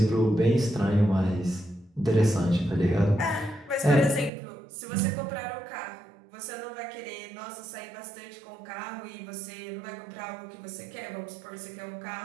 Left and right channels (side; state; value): left; drops out; at 4.3 s